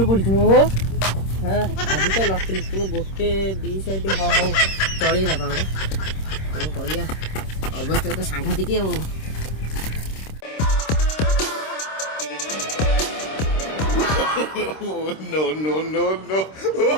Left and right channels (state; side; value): late; right; 26 ms